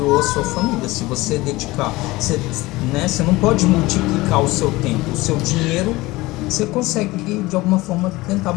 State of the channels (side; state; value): right; quieter; 20.3 dB